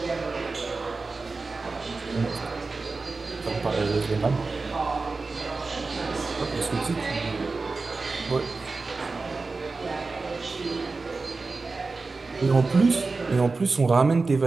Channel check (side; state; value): left; quieter; 3.9 dB